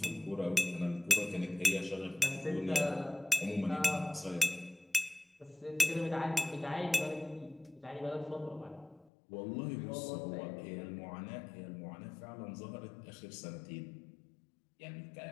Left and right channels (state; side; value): drops out; right; at 9.1 s